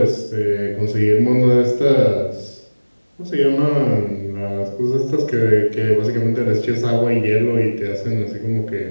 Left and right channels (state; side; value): inverted; both; correlation -1.00